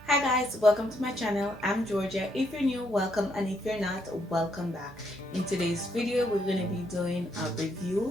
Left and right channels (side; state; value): both; normal; correlation 0.74